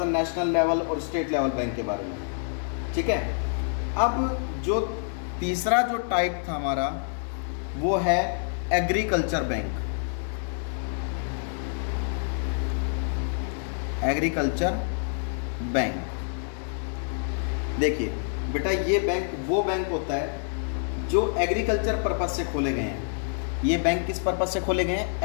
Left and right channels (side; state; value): right; silent; digital silence